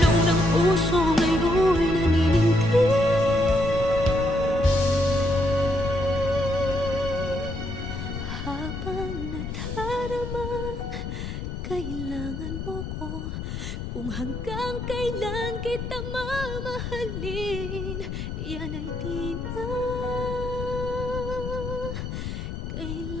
ng puso ngayon'y naninindig. Habang nadaramang kailangan mo ko, kung hanggang kailan kita mamahalin, yan ay di na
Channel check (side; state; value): left; noise; rumble, 6 dB below the sound